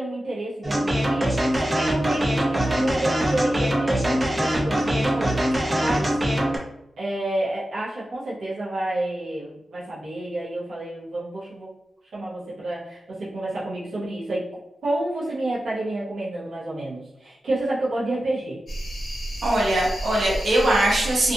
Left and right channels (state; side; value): normal; both; correlation 0.92